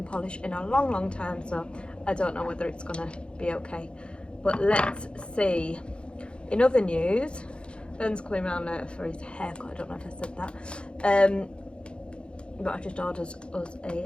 polish in a long time, so I don't know whether it's going to be okay. But let's see. In other news, Ben's coming around later for his haircut. I don't know if I said that. but I just ordered us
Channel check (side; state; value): right; late; 0.056 ms